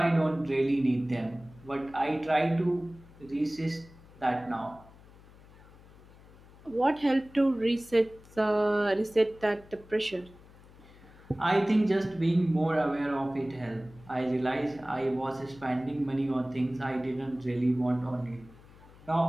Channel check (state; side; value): noise; left; hum, 23 dB below the sound